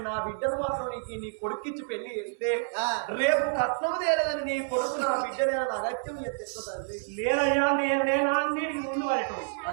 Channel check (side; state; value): left; silent; 59 dB below the other